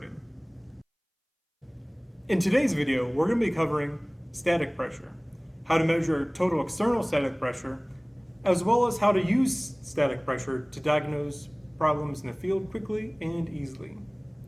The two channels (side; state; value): both; identical; correlation 1.00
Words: In today's video, we're going to be covering static pressure, how to measure total external static pressure, as well as how to use static pressure to diagnose problems in the field quickly and easily.